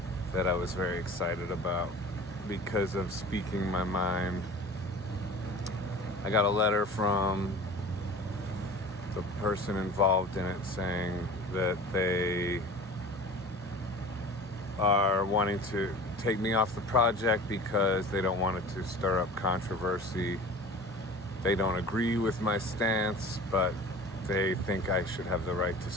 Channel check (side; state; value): both; normal; correlation 0.40